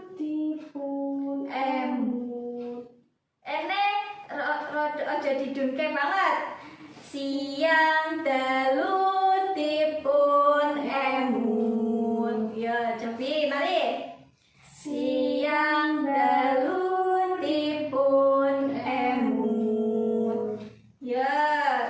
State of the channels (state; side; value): identical; both; correlation 1.00